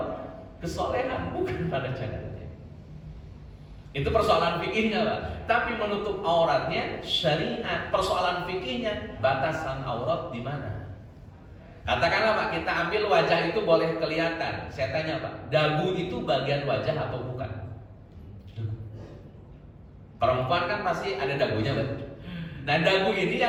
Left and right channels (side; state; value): both; identical; correlation 1.00